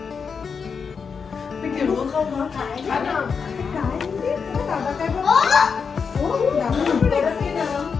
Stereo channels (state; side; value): quieter; right; 5.8 dB